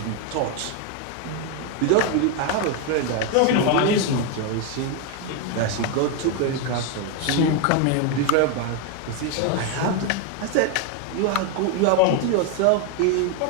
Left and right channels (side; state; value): both; different; correlation 0.01